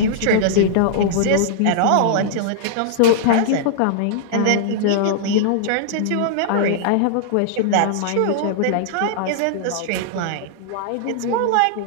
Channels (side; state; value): both; different; correlation -0.01